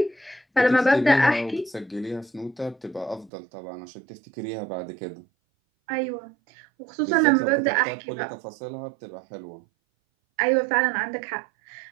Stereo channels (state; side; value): drops out; left; at 3.3 s